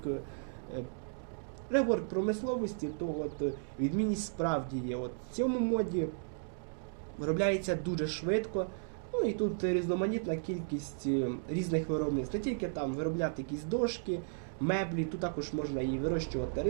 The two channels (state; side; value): silent; left; digital silence